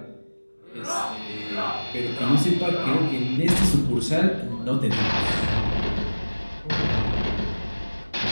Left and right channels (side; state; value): both; inverted; correlation -1.00